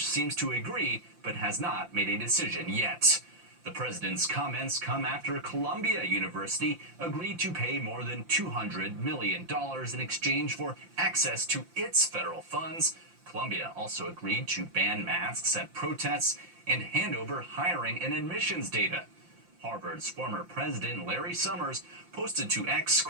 seems to agree, but has not made a decision yet. The president's comments come after Columbia University agreed to pay more than $200 million in exchange for access to its federal funds. Columbia also agreed to ban masks at protests and hand over hiring and admissions data. Harvard's former president, Larry Summers, posted to X,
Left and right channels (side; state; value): left; late; 5.8 ms